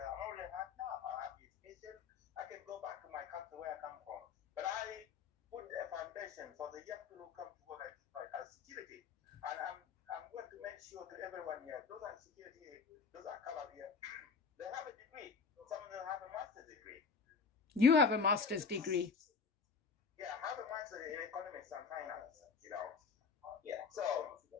I'm already hard now. I have education. I can go back to my country where I come from. But I put a foundation for the young people who come to work at security. And I'm going to make sure to everyone here, those are security, those are colored here, they have a degree. Some of them have a master's degree. You have a master's degree. Yeah, I have a master in economics and finance. Yeah. So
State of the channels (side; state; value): right; quieter; 5.2 dB